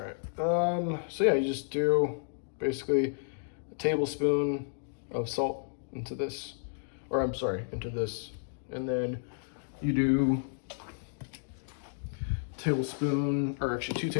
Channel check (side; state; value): right; silent; digital silence